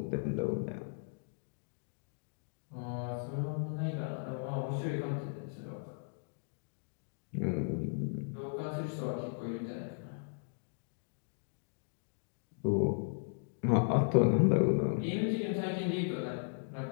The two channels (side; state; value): right; silent; digital silence